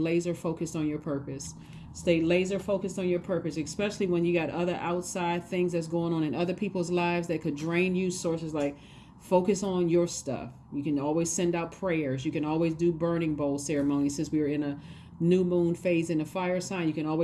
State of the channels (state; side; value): identical; both; correlation 1.00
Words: focused on your purpose. Stay laser focused on your purpose, especially when you got other outside things that's going on in other people's lives that could drain you. Sources like focus on your stuff. You can always send out prayers. You can always do burning bowl ceremonies since we are in a new moon phase in the fire sign. You can